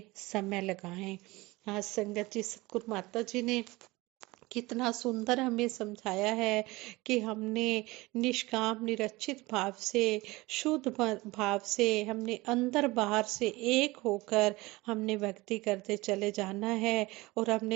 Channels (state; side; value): quieter; left; 21.4 dB